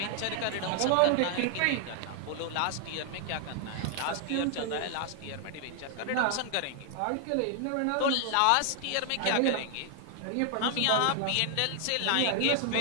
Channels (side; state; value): both; different; correlation 0.00